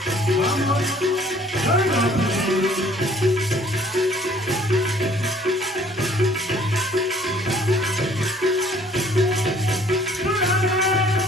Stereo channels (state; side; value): normal; both; correlation 0.57